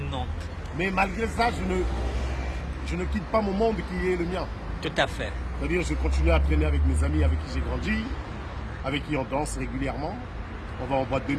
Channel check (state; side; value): identical; both; correlation 1.00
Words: Mais malgré ça, je ne quitte pas mon monde qui est le mien. Tout à fait. C'est-à-dire, je continue à traîner avec mes amis avec qui j'ai grandi, avec qui on danse régulièrement. On va en boîte de